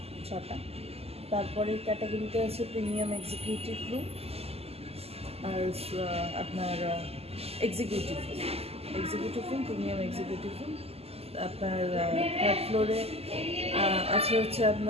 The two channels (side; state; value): left; late; 0.29 ms